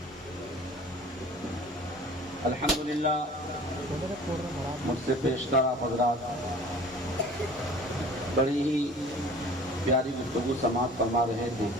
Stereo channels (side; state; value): both; normal; correlation 0.45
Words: الحمدللہ مجھ سے پیشتر آپ حضرات بڑی ہی پیاری گفتگو سماعت فرما رہے تھے۔